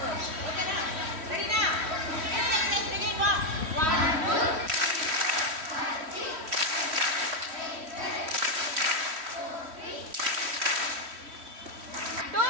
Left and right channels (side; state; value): left; late; 3.1 ms